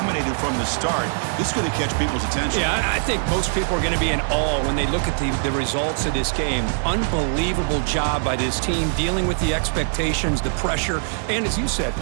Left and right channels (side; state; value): left; silent; digital silence